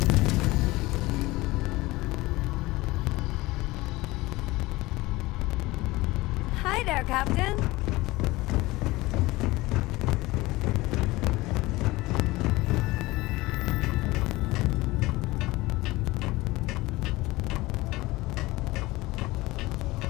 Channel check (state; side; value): quieter; right; 20.2 dB